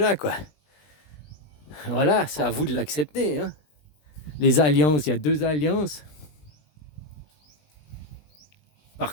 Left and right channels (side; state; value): right; late; 20 ms